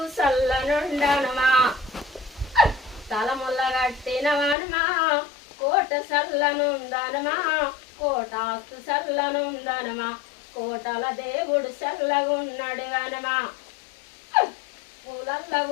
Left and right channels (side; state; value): right; drops out; at 4.5 s